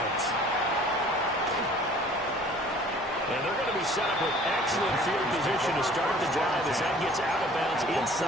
And they're going to be set up with excellent field position to start the drive as that gets out of bounds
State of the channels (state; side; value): normal; both; correlation 0.51